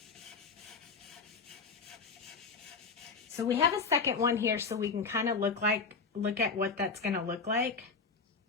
So we have a second one here so we can kind of look at what that's going to look like.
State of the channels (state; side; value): quieter; right; 4.9 dB